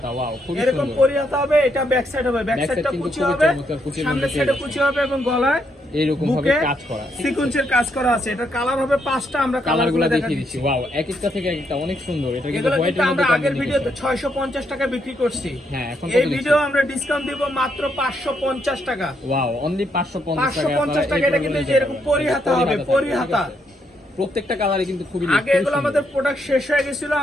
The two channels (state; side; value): normal; both; correlation 0.76